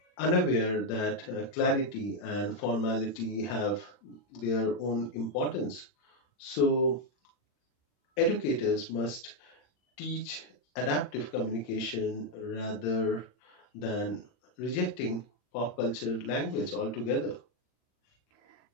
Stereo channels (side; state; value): right; late; 40 ms